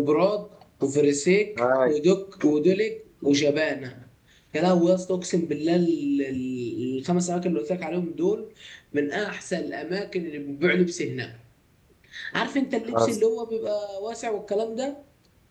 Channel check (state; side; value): identical; both; correlation 1.00